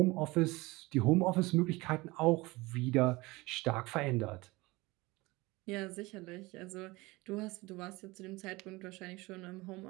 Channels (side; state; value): left; quieter; 22.1 dB